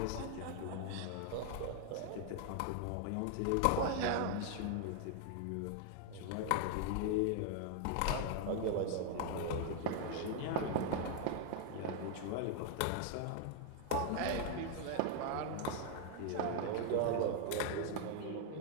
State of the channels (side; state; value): both; different; correlation 0.00